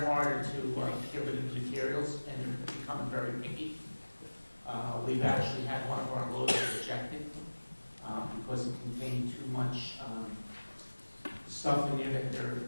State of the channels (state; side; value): inverted; both; correlation -1.00